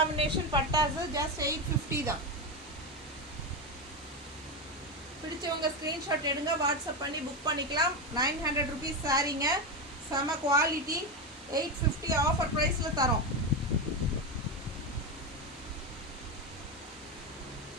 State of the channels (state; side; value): normal; both; correlation 0.13